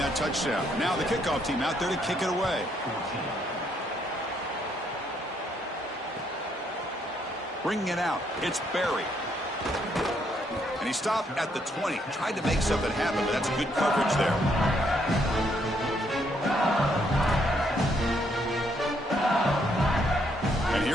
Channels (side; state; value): both; normal; correlation 0.72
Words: touchdown. Now the kickoff team out there to kick it away. Bringing it out, it's Barry. And he stopped at the 20. Tried to make something happen, but that's good coverage there. And